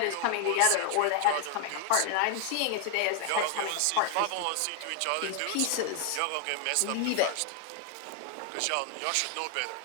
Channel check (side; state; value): both; different; correlation 0.00